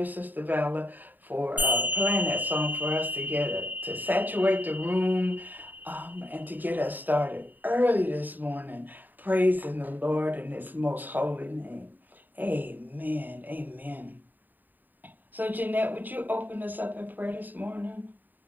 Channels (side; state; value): left; late; 0.088 ms